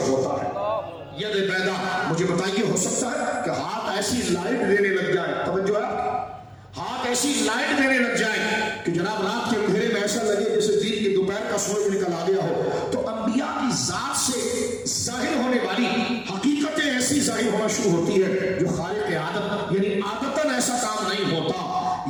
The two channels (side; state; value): both; identical; correlation 1.00